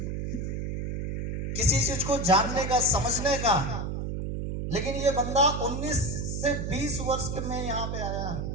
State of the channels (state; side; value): noise; right; hum, 3 dB below the sound